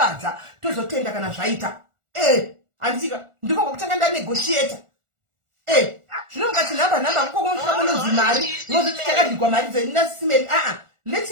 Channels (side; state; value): left; late; 1.4 ms